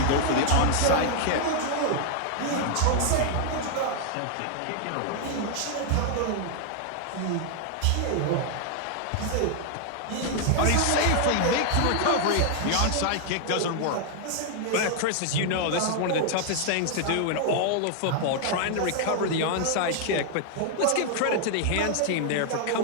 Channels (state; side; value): different; both; correlation 0.00